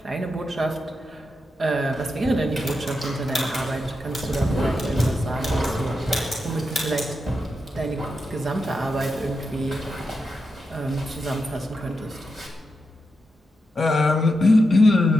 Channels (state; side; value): normal; both; correlation 0.87